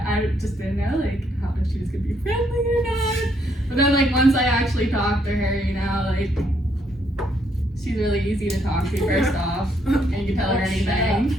just didn't know, like, how if she was going to be friendly or not. But then, like, once I actually talked to her, you know, like, she's really easy to talk to, first off. And you can tell her anything.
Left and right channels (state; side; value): normal; both; correlation 0.72